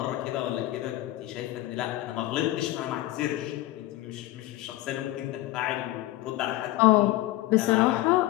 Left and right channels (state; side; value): quieter; right; 16.6 dB